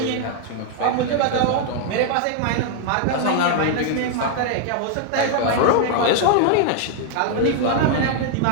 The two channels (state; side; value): different; both; correlation 0.00